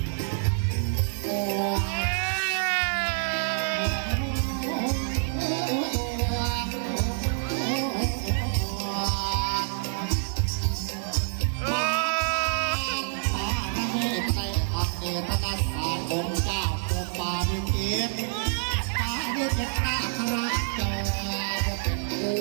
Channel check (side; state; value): left; silent; digital silence